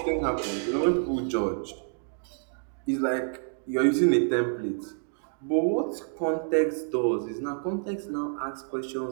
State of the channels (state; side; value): silent; left; digital silence